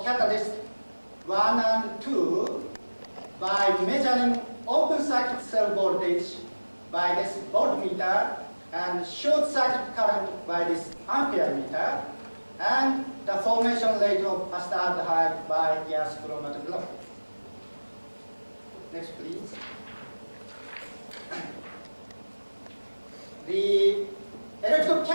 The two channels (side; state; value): both; inverted; correlation -1.00